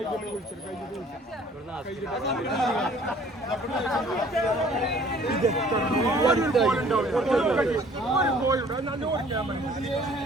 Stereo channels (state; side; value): normal; both; correlation 0.55